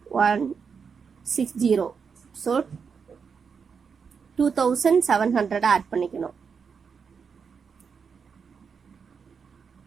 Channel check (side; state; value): left; quieter; 6.0 dB